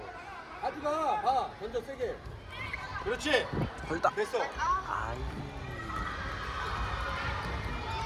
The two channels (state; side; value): identical; both; correlation 1.00